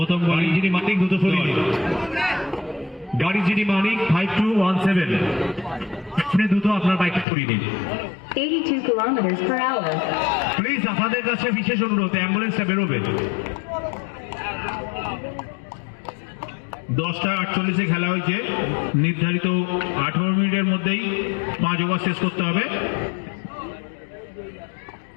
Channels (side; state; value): right; drops out; at 7.2 s